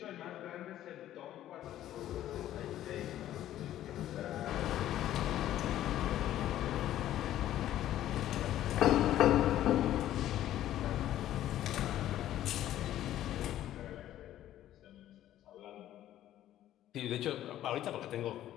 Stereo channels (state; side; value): quieter; right; 12.7 dB